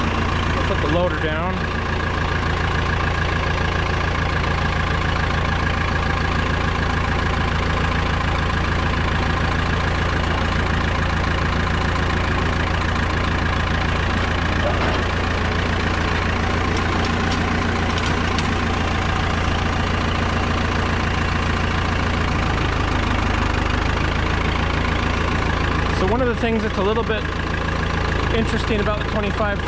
Put the loader down. One of the things that's a little bit interesting about the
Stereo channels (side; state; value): both; identical; correlation 1.00